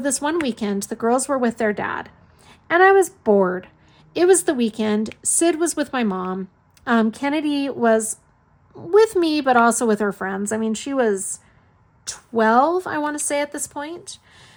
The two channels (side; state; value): both; identical; correlation 1.00